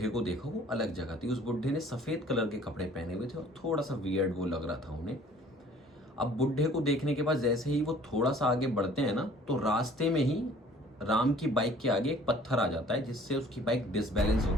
को देखा वो अलग जगह थी। उस बुढ़े ने सफेद कलर के कपड़े पहने हुए थे और थोड़ा सा वियर्ड वो लग रहा था उन्हें। अब बुढ़े को देखने के बाद जैसे ही वो थोड़ा सा आगे बढ़ते हैं ना, तो रास्ते में ही राम की बाइक के आगे एक पत्थर आ जाता है, जिससे उसकी बाइक डिसबैलेंस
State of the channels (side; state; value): both; normal; correlation 0.53